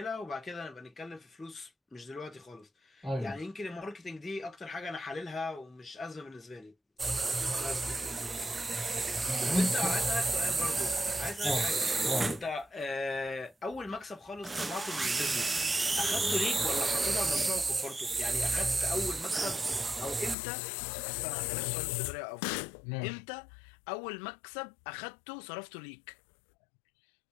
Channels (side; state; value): right; drops out; at 20.4 s